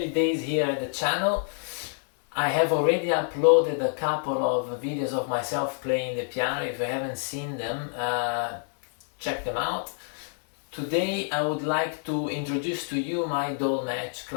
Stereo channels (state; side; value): silent; right; 60 dB below the other